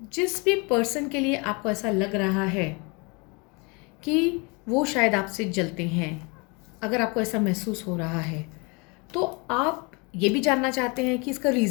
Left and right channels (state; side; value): quieter; right; 30.0 dB